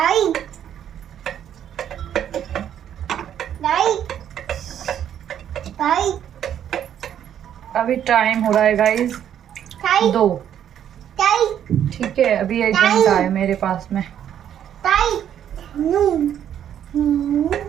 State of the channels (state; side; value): quieter; left; 9.8 dB